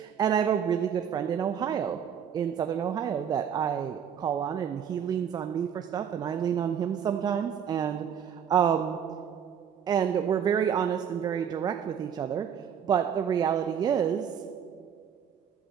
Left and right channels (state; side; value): quieter; left; 8.2 dB